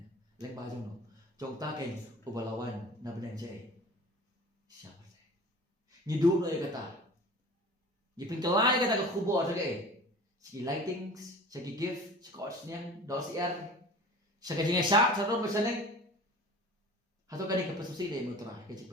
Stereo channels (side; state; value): both; normal; correlation 0.41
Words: Leng ba jong no. Jong ta ken ubalawan na benang je. Siapa se. Ni du no kata. Ni pengkelai kata ka kubo ta ke. Segi lightings, segi gift, scotch niang, dos sa kajing syak, sa ron berseneng. Hato kani ka pasusi de motora ka jing